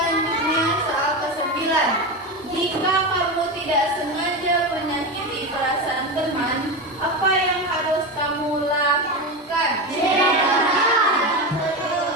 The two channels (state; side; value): normal; both; correlation 0.19